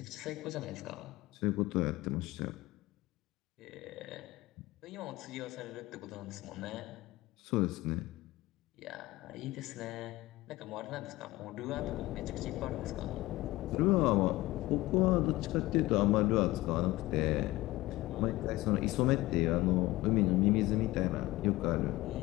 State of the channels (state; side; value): quieter; right; 18.6 dB